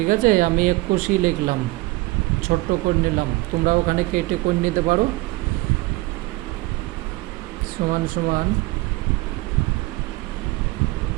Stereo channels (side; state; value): left; quieter; 20.6 dB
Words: আছে। আমি 21ই লিখলাম, ছোট্ট করে নিলাম, তোমরা ওখানে কেটে করে নিতে পারো। সমান সমান